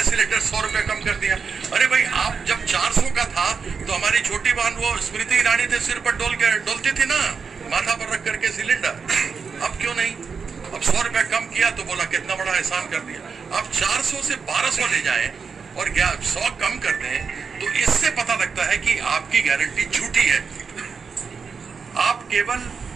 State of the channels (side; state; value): left; quieter; 5.6 dB